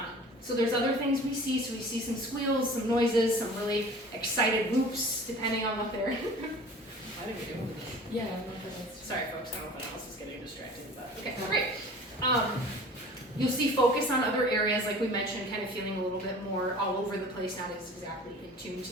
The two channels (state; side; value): normal; both; correlation 0.43